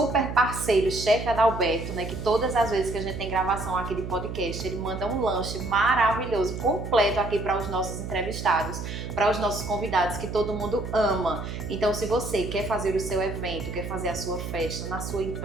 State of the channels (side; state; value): right; noise; hum, 7 dB below the sound